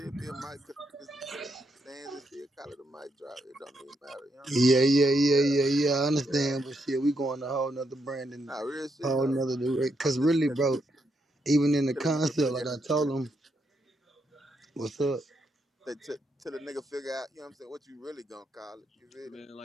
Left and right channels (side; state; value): both; normal; correlation 0.79